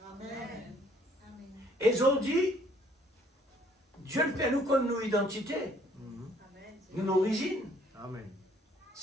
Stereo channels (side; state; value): both; normal; correlation 0.61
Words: Et aujourd'hui, Dieu fait nous comme nos identités. Une origine. Amen.